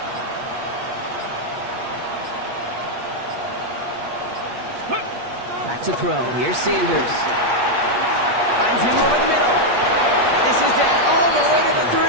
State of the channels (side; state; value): left; late; 8.4 ms